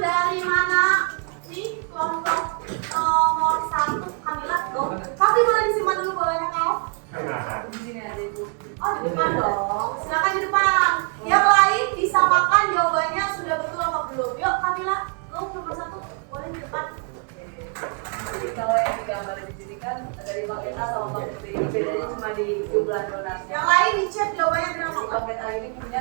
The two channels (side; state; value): left; quieter; 39.6 dB